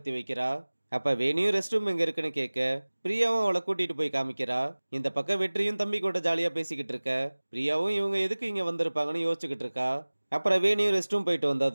வைக்கிறா. அப்ப வேணியும் ரெஸ்ட் ரூம் எங்க இருக்குன்னு கேட்க, பிரியாவும் அவளை கூட்டிட்டு போய் காமிக்கிறா. இந்த பக்கம் வெற்றியும் தம்பி கூட ஜாலியா பேசிக்கிட்டு இருக்க, பிரியாவும் இவங்க எதுக்கு இங்க வந்திருப்பாங்கன்னு யோசிச்சுக்கிட்டு இருக்கா. அப்புறம் வேணியும் ரெஸ்ட் ரூம் போயிட்டு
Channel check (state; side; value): inverted; both; correlation -1.00